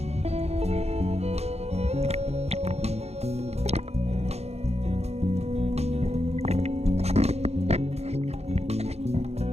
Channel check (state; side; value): late; left; 0.31 ms